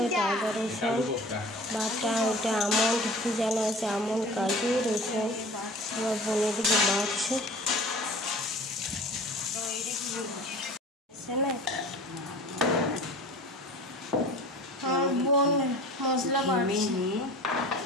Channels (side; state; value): both; normal; correlation 0.41